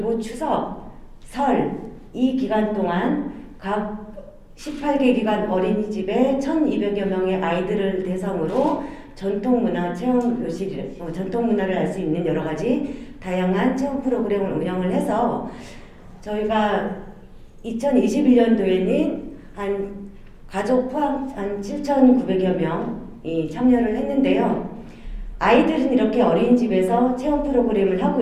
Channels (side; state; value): both; identical; correlation 1.00